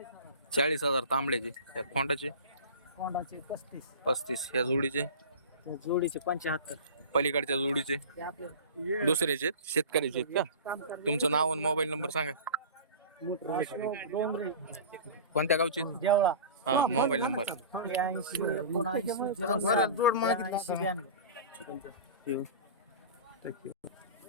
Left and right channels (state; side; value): inverted; both; correlation -0.36